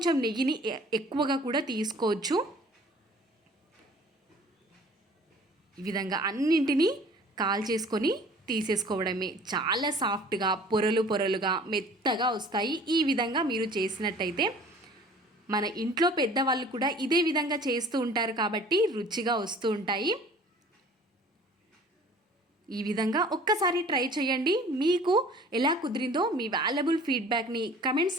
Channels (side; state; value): both; normal; correlation 0.49